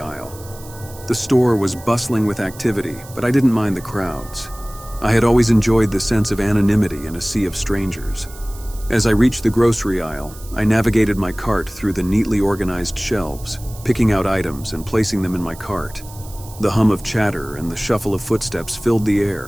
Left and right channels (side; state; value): right; noise; hiss, 19 dB below the sound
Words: The store was bustling with activity, but I didn't mind the crowds. I had always enjoyed the sense of anonymity in a sea of strangers. As I reached the grocery aisle, I navigated my cart through the neatly organized shelves, picking out items and placing them in my cart. The hum of chatter and the shuffle of footsteps filled the